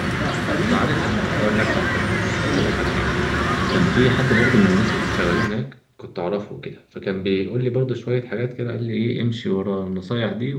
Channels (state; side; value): identical; both; correlation 1.00